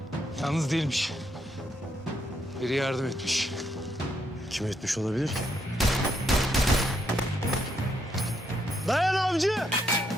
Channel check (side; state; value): both; normal; correlation 0.76